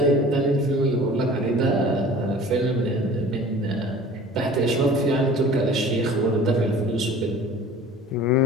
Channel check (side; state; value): both; normal; correlation 0.44